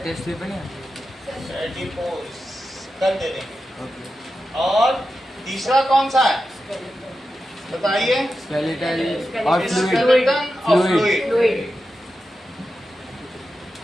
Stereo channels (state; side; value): normal; both; correlation 0.91